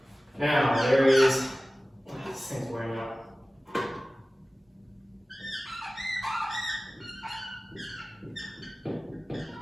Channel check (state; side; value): normal; both; correlation 0.97